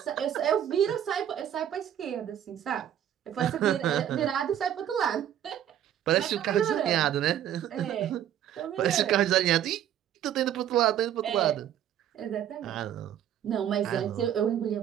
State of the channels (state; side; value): quieter; left; 10.6 dB